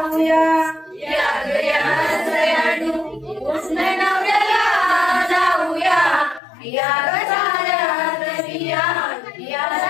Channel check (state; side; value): drops out; right; at 6.4 s